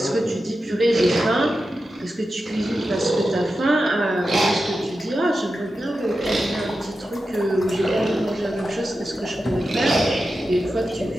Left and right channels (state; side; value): normal; both; correlation 0.91